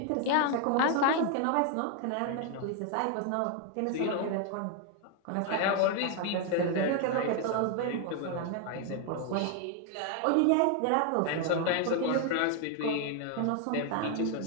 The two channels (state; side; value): different; both; correlation 0.00